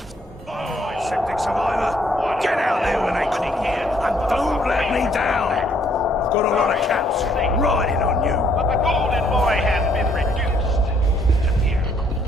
Oh, septic survivor. Get out there when they call. And don't let me down. I've got a lot of caps riding on you. But the golden boy has been reduced to mere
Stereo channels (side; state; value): both; normal; correlation 0.67